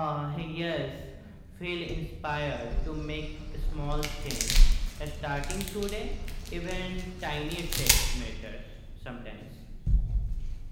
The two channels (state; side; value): identical; both; correlation 1.00